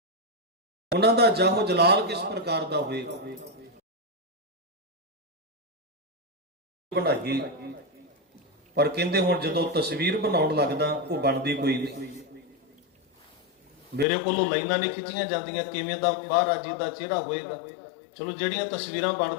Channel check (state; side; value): drops out; right; at 14.1 s